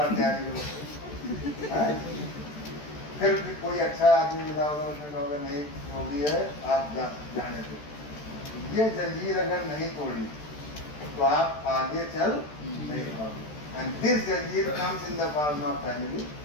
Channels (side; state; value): right; late; 13 ms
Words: तैयारी करो, फिर भी कोई अच्छा आदमी मिला होगा, उसने कहा होगा नहीं जो भी है आप जाने दो। ये जंजीर अगर नहीं तोड़ी तो आप आगे चल नहीं पाओगे। एंड दिस जंजीर comes in the form of family,